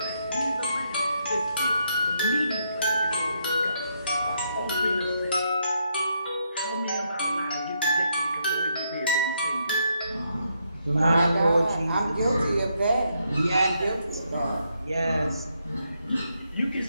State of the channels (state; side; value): inverted; both; correlation -0.77